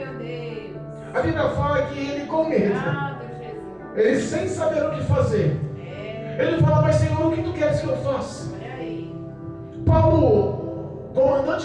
Deus. A Bíblia fala que ele, com medo, ele sem saber o que fazer, ele fala: mas Senhor, o que tu queres que eu faça? Paulo,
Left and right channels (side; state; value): both; identical; correlation 1.00